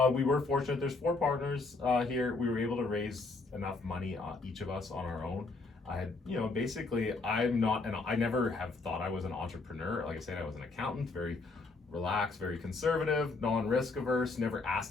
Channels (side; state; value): right; quieter; 3.7 dB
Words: We were fortunate. There's 4 partners here. We were able to raise enough money, each of us on our own. I had, basically, I never have thought I was an entrepreneur. Like I said, I was an accountant, very relaxed, very conservative, non-risk averse, never